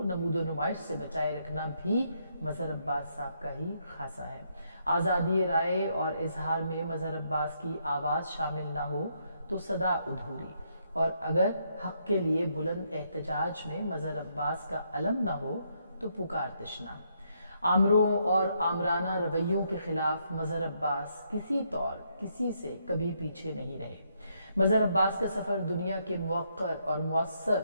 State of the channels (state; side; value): inverted; both; correlation -0.75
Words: نمود و نمائش سے بچائے رکھنا بھی مظہر عباس صاحب کا ہی خاصہ ہے. آزادی رائے اور اظہار میں مظہر عباس کی آواز شامل نہ ہو تو صدا ادھوری, اور اگر حق کے لیے بلند احتجاج میں مظہر عباس کا علم نہ ہو تو پکار تشنا. آمروں اور آمرانہ رویوں کے خلاف مظہر عباس کسی طور کسی سے کبھی پیچھے نہیں رہے. مظہر عباس کا سفر دنیا کے موقر اور مؤثر